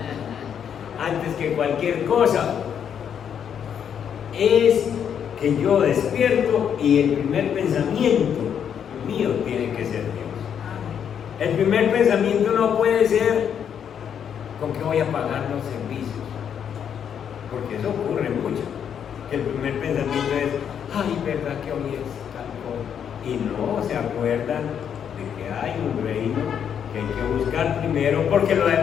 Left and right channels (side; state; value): right; quieter; 8.3 dB